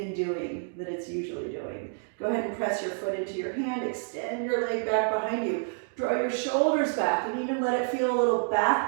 and doing that it's usually doing. Go ahead and press your foot into your hand, extend your leg back behind you, draw your shoulders back, and even let it feel a little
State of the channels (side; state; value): left; silent; 59 dB below the other